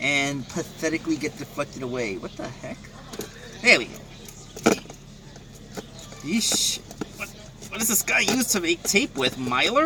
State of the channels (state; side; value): identical; both; correlation 1.00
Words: And pathetically get deflected away. What the heck? There we go. Yeesh. What does this guy use to make tape with?